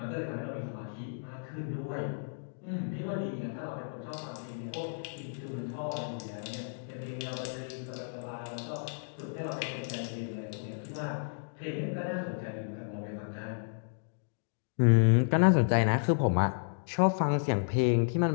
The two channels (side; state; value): right; silent; digital silence